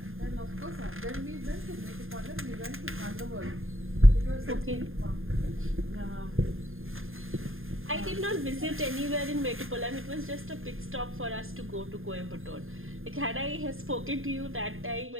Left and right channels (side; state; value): left; late; 0.60 ms